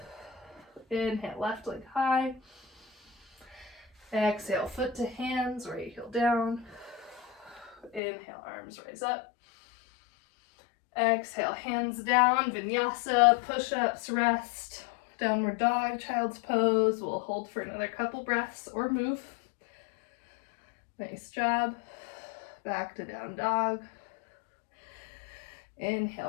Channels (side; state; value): right; drops out; at 8.0 s